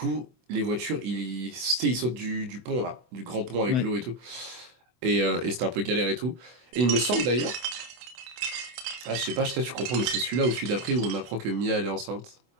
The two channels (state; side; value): late; left; 24 ms